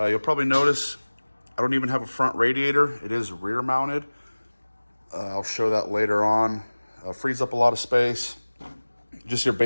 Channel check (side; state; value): both; inverted; correlation -1.00